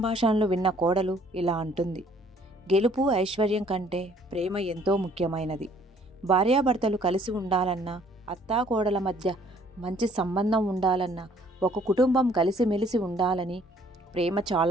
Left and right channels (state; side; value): normal; both; correlation 0.60